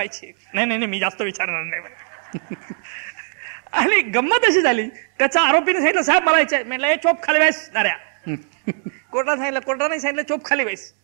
नाही मी जास्त विचारणार नाही. आणि गंमत अशी झाली, त्याचा आरोपीने सांगितलं साहेब मला यायचंय. म्हटलं हे चोप खाली व्हायस नाऱ्या. कोर्टाने सांगितलं चोप खाली व्हायस.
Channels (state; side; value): silent; left; 65 dB below the other